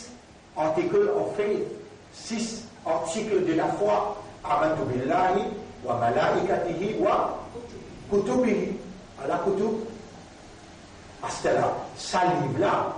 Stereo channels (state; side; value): identical; both; correlation 1.00